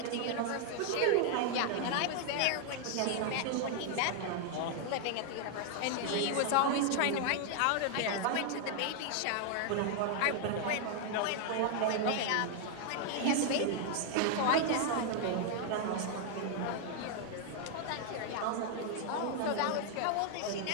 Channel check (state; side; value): different; both; correlation 0.00